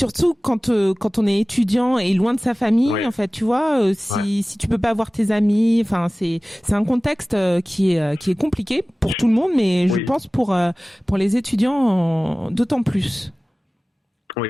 quand on est étudiant et loin de sa famille, en fait, tu vois, si tu peux pas voir tes amis, c'est un contexte qui est compliqué pour tout le monde, mais je pense pour les étudiants d'autant plus. Oui,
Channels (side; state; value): both; normal; correlation 0.98